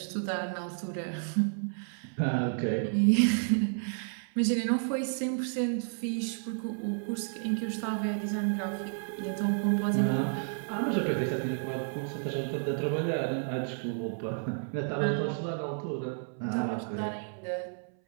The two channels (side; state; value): left; silent; 57 dB below the other